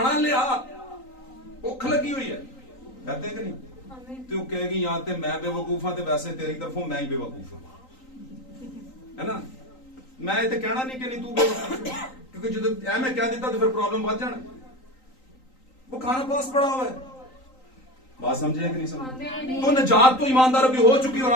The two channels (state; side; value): late; right; 3.9 ms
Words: लिया, भुख लगी हुई है, कहते कि नहीं? तो कहेगी या तो मैं बेवकूफ हाँ, तो वैसे तेरी तरफों मैं ही बेवकूफ हाँ, है ना? मैं ये कहना नहीं कि नहीं तू बेवकूफ, क्योंकि जो ऐ मैं कह देता तो फिर प्रॉब्लम बढ़ जाना। वो खाना पास पड़ा हुआ है। बात समझे कि नहीं समझे? तो निजात तो ईमानदारों की हो चुकी, और